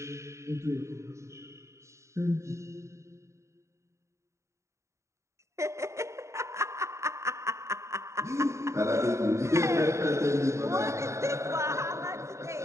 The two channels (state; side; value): late; left; 0.14 ms